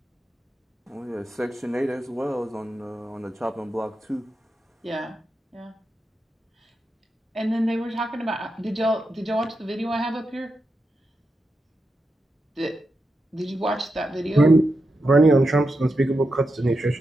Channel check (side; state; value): both; normal; correlation 0.88